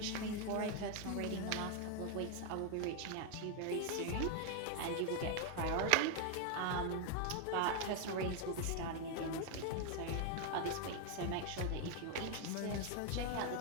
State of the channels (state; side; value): different; both; correlation 0.01